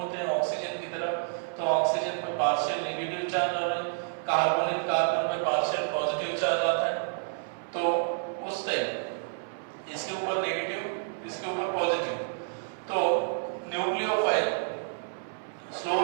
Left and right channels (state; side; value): silent; left; 58 dB below the other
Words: हैं ऑक्सीजन की तरफ, तो ऑक्सीजन पे पार्शियल नेगेटिव चार्ज और कार्बोनिल कार्बन पे पार्शियल पॉजिटिव चार्ज आता है। तो उस टाइम इसके ऊपर नेगेटिव, इसके ऊपर पॉजिटिव, तो न्यूक्लियोफाइल